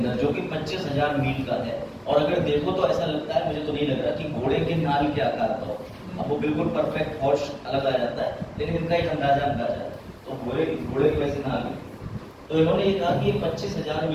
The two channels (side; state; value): both; identical; correlation 1.00